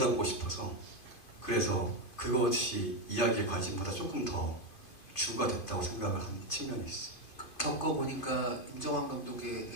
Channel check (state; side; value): late; right; 2.5 ms